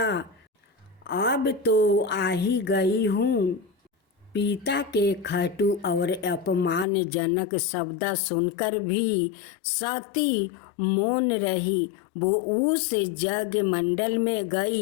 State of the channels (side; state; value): right; drops out; at 6.9 s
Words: अब तो आ ही गई हूँ। पिता के खटू और अपमानजनक शब्द सुनकर भी सती मौन रही। वो उस जग मंडल में